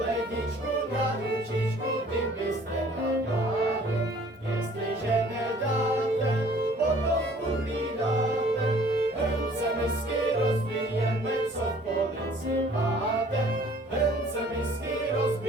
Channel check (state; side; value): normal; both; correlation 0.54